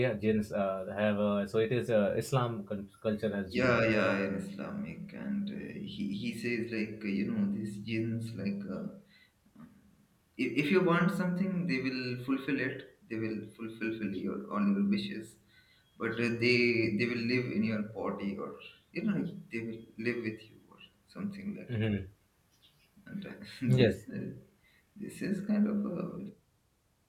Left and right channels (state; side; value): identical; both; correlation 1.00